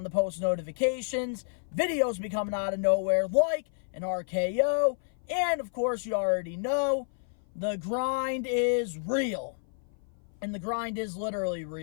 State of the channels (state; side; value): silent; right; 56 dB below the other